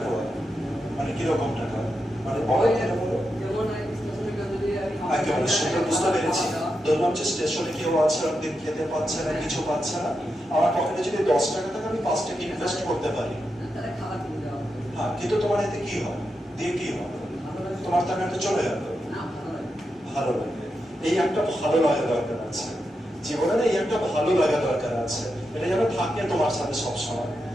দেওয়া মানে কিরকম টাকা? মানে বড় টাকা বলো, একেবারে সুন্দর, বুঝতে পেরেছি। ধরলাম যে স্টেশনে কেউ আছে, একদিন খেতে পাচ্ছে না, কিছু পাচ্ছে না, আমার পকেটে যদি 10 টাকা থাকে, আমি 5 টাকা ইনভেস্ট করতে পারি। হ্যাঁ, কিন্তু তোমার এতে কি হবে? দিয়ে কি হবে? তোমার টাকাটা চলে যাবে, ভালো লাগে। এই একটা ভালো লাগা দরকার আছে জীবনে, এই একটা ভালো লাগা দরকার আছে, এটা যেন থাকে তোমার সাথে সবসময়।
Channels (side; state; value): both; normal; correlation 0.87